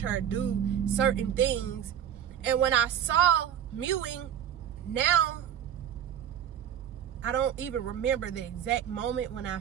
her do certain things. And when I saw mewing, now, I don't even remember the exact moment when I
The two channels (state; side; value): quieter; left; 9.6 dB